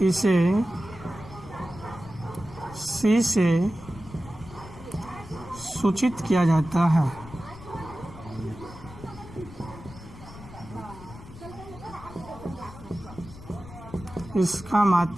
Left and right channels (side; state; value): left; noise; rumble, 16 dB below the sound